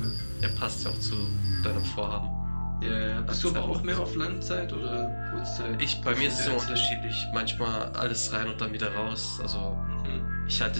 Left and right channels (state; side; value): inverted; both; correlation -1.00